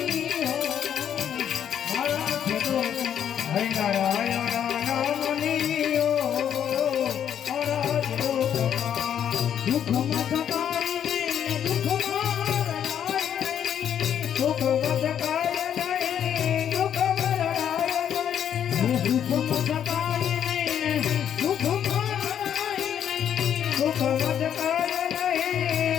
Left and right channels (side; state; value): right; quieter; 9.3 dB